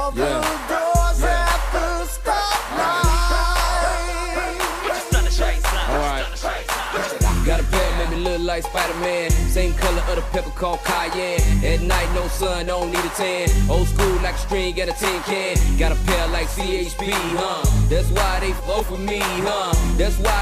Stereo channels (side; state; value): both; identical; correlation 1.00